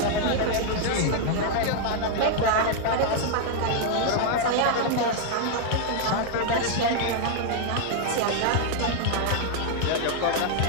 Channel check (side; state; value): both; different; correlation 0.00